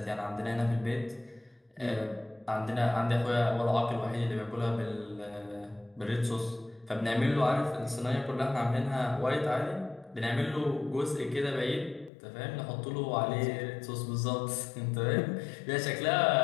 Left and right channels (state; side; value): drops out; right; at 12.1 s